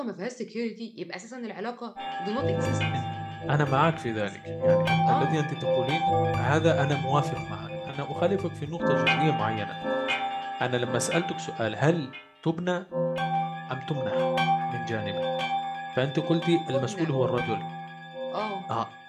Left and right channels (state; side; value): identical; both; correlation 1.00